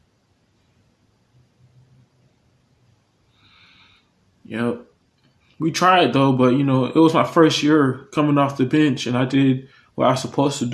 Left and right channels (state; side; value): identical; both; correlation 1.00